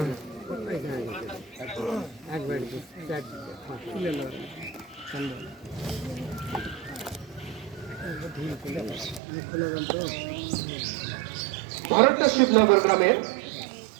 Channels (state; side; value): drops out; left; at 9.2 s